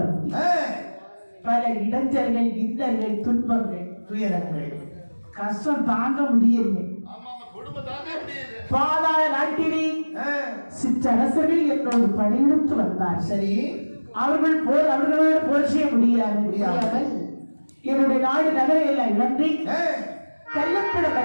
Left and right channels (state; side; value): inverted; both; correlation -1.00